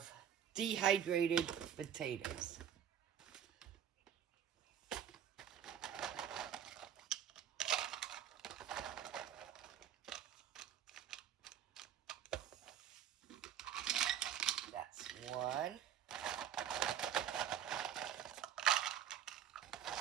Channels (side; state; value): left; quieter; 9.5 dB